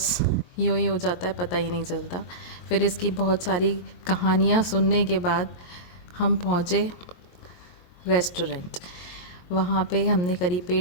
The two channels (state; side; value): late; right; 22 ms